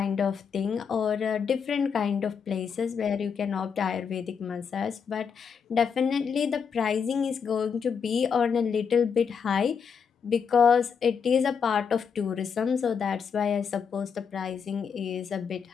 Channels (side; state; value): right; quieter; 6.5 dB